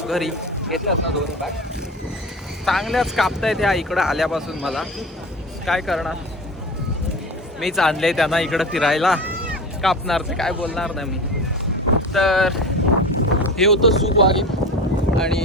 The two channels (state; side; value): normal; both; correlation 0.31